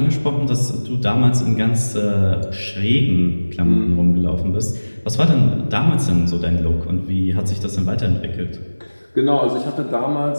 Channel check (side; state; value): both; inverted; correlation -1.00